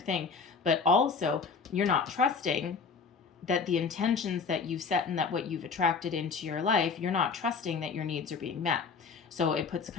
but also you're not trusting that the intentions that you've set and that what you've attracted into your life, you're not trusting that your needs are being met. So it puts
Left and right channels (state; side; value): quieter; right; 5.2 dB